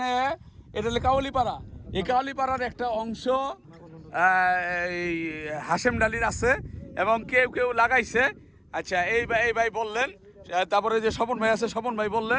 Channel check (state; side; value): identical; both; correlation 1.00